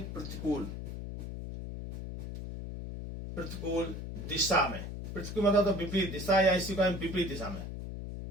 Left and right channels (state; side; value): noise; left; hum, 7 dB below the sound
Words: प्रतिकूल दिशा में, प्रतिकूल मतलब तो विपरीत दिशा या इसी को विपरीत दिशा में,